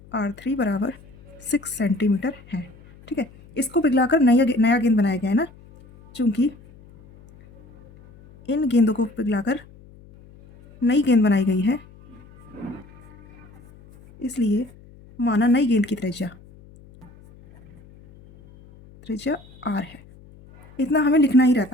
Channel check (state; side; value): noise; left; hum, 24 dB below the sound